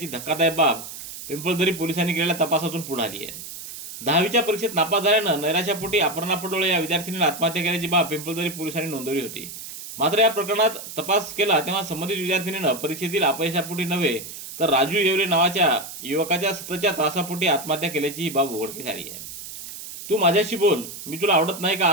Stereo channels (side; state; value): right; noise; hiss, 11 dB below the sound